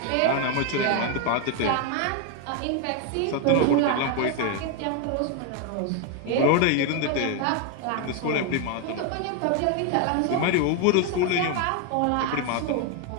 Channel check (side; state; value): both; different; correlation 0.01